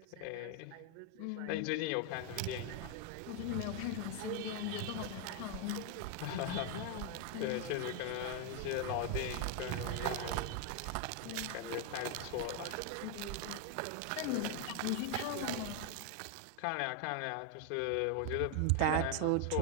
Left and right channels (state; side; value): different; both; correlation 0.01